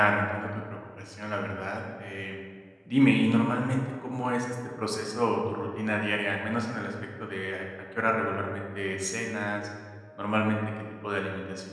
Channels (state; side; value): identical; both; correlation 1.00